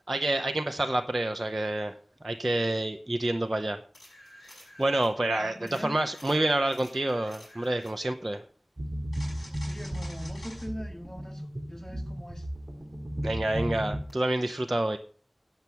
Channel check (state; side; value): normal; both; correlation 0.96